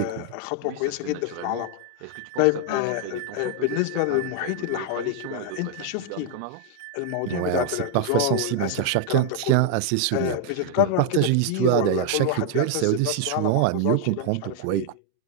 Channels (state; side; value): different; both; correlation 0.00